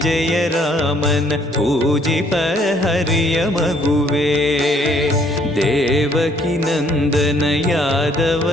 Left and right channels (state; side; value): normal; both; correlation 0.64